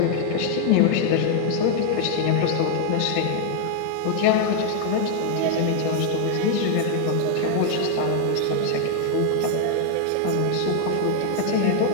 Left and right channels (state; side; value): different; both; correlation 0.00